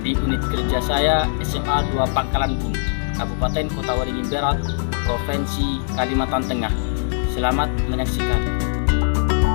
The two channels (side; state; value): right; silent; digital silence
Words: di unit kerja saya SMA 2 Pangkalan Bun, Kabupaten Kota Waringin Barat, Provinsi Kalimantan Tengah. Selamat menyaksikan.